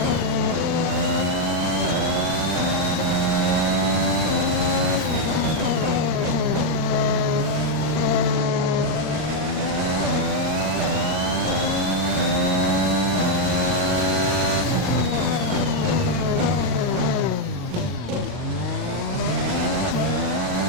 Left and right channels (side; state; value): left; late; 39 ms